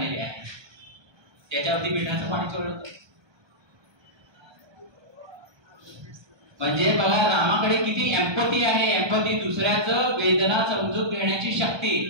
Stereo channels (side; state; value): left; late; 1.3 ms